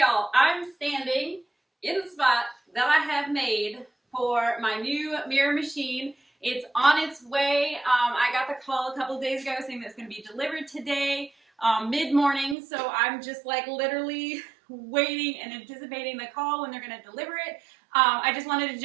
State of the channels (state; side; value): drops out; left; at 12.6 s